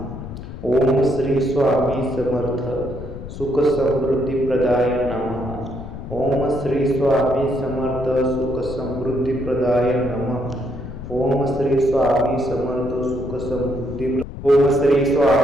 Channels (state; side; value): noise; left; rumble, 11 dB below the sound